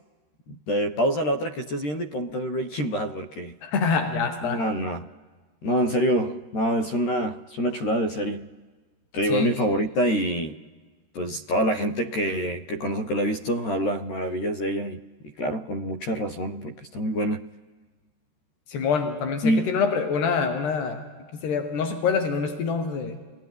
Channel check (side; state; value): right; late; 13 ms